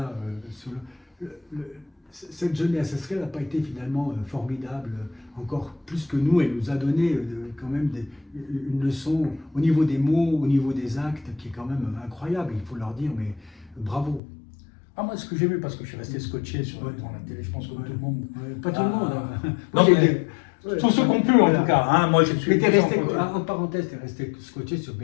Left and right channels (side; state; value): right; drops out; at 14.2 s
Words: sur cette jeunesse, est-ce qu'elle n'a pas été finalement formidable, encore plus que nous, elle nous a donné quand même une leçon au niveau des mots, au niveau des actes, qui est quand même incroyable, il faut leur dire, mais bravo. Ah, moi, ce que j'ai vu, parce que je suis resté scotché devant la télé, je pense comme tout le monde. Pas tout le monde. Hein. Non, tous ceux qu'on peut, en tout cas. Hein, moi, je suis. Mais t'es resté, en parenthèse, t'es resté scotché sur